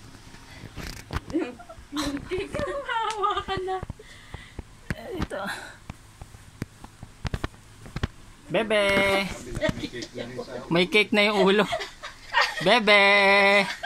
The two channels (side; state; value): both; identical; correlation 1.00